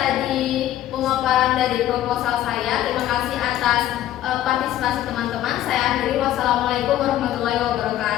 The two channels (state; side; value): quieter; right; 12.9 dB